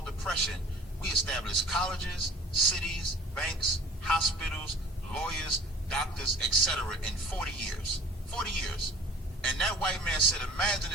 depression, we established colleges, cities, banks, hospitals, lawyers, doctors, etc. in 40 years. 40 years. And that white man said, imagine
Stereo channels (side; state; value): both; normal; correlation 0.47